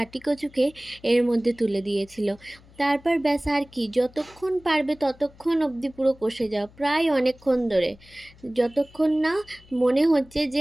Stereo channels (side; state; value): left; noise; hum, 25 dB below the sound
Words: কচুকে এর মধ্যে তুলে দিয়েছিল। তারপর ব্যাস, আর কি, যতক্ষণ পারবে ততক্ষণ অবধি পুরো কষে যাও, প্রায় অনেকক্ষণ ধরে, যতক্ষণ না মনে হচ্ছে